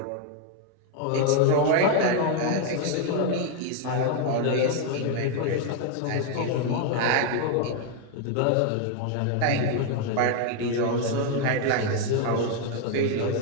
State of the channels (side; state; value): both; different; correlation 0.01